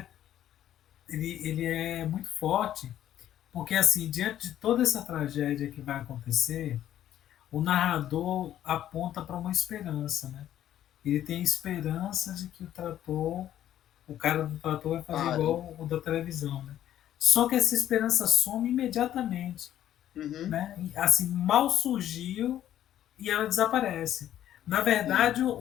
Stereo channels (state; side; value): quieter; right; 11.7 dB